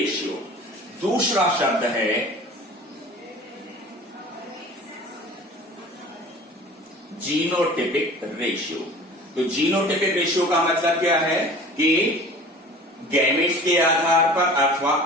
दूसरा शब्द है जीनोटिपिक रेशियो। तो जीनोटिपिक रेशियो का मतलब क्या है कि गैमेट्स के आधार पर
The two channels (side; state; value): both; normal; correlation 0.42